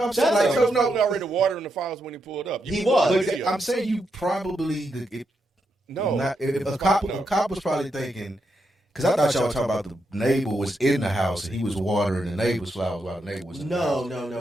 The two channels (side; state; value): both; normal; correlation 0.82